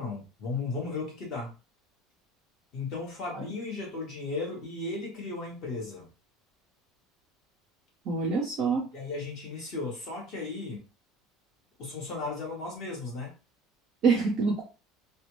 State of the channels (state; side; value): normal; both; correlation 0.40